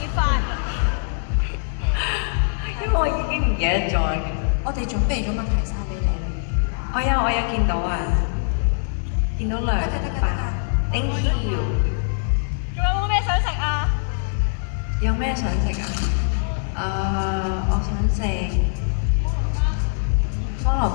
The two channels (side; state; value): right; silent; 64 dB below the other